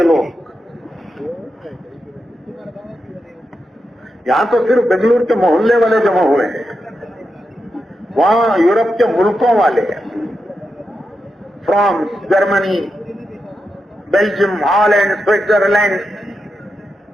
لوگ. یہاں تو صرف بنگلور کے محلے والے جمع ہوئے ہیں، وہاں یورپ کے ملکوں والے، France, Germany, Belgium, Holland, Switzerland,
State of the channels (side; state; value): both; normal; correlation 0.87